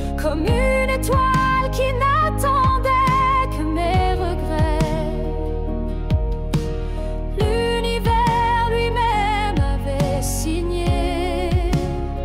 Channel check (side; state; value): both; identical; correlation 1.00